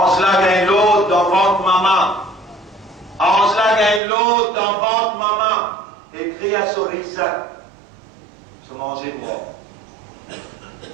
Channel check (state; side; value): drops out; left; at 4.0 s